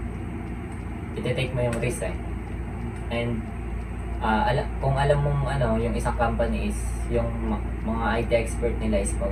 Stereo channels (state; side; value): identical; both; correlation 1.00